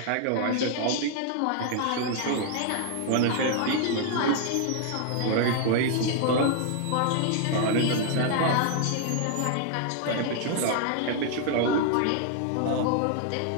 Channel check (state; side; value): different; both; correlation 0.00